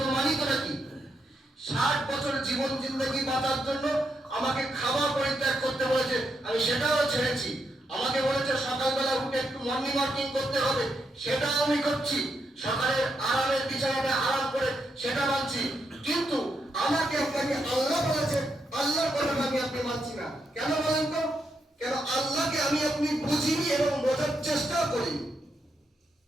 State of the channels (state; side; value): normal; both; correlation 0.81